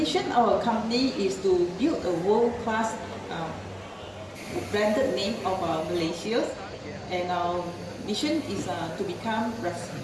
of our company is to build a world-class branded name of Malaysia, and our mission is to become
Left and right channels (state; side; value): identical; both; correlation 1.00